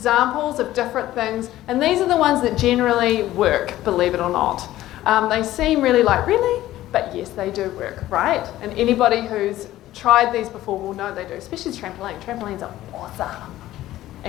of different things, and these are the ones that generally work, believe it or not. They seem really but yes, they do work, right? And anybody who's tried these before will know they do, especially trampoline. Trampolines are awesome.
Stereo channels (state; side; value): quieter; right; 14.7 dB